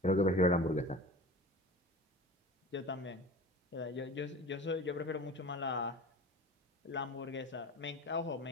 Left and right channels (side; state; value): both; normal; correlation 0.37